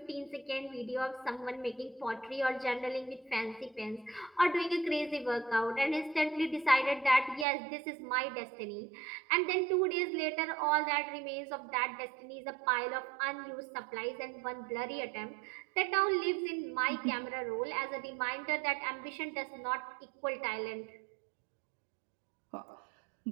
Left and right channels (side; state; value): left; drops out; at 7.5 s